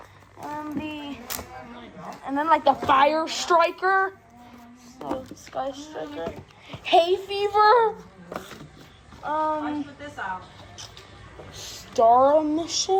and then like the fire striker, so sky striker, hay fever, Why'd you put this out? star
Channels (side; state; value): both; identical; correlation 1.00